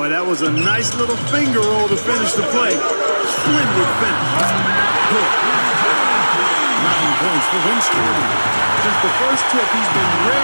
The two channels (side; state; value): both; inverted; correlation -1.00